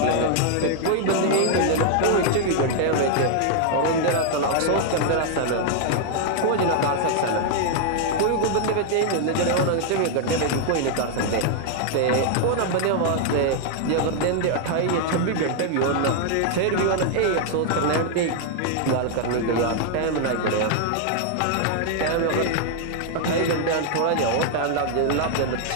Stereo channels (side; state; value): both; different; correlation 0.00